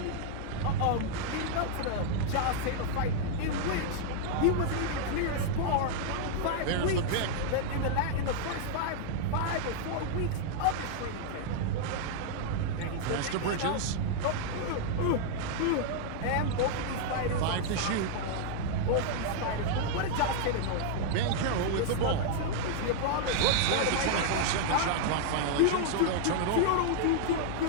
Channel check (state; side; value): different; both; correlation -0.01